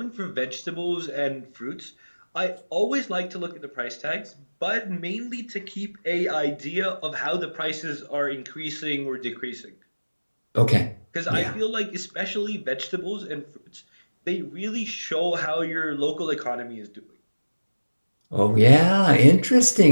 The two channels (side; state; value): both; inverted; correlation -1.00